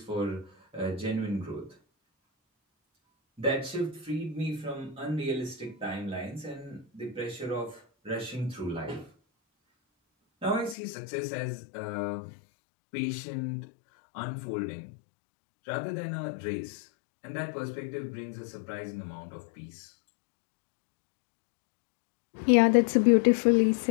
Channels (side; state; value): right; drops out; at 10.8 s